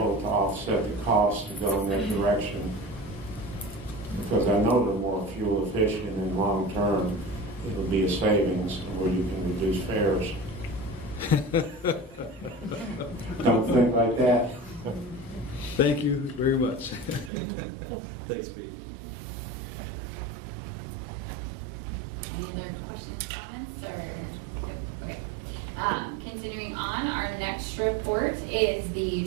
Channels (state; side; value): drops out; left; at 17.3 s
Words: to offset the cost to go in that direction, because I know they're more fuel efficient and long term. It'll be a savings where you can reduce fares. Don't think like that. Thank you very much. Thanks, Pete. Any other questions, comments, or? Okay. Continuing on, our next report is